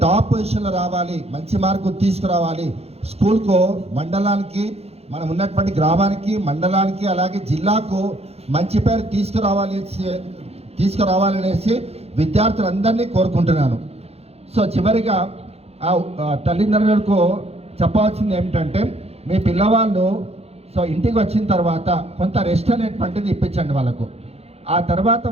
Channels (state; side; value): late; left; 0.30 ms